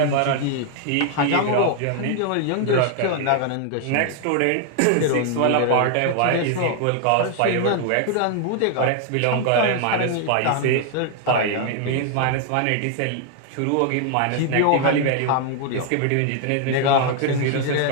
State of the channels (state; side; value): different; both; correlation 0.00